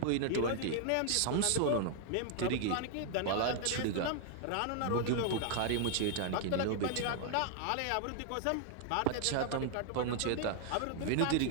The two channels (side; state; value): both; different; correlation 0.00